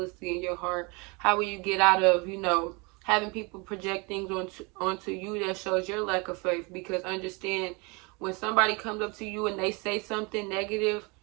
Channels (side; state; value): left; quieter; 28.8 dB